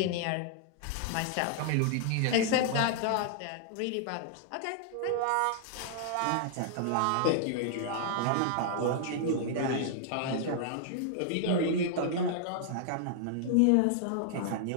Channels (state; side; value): different; both; correlation -0.01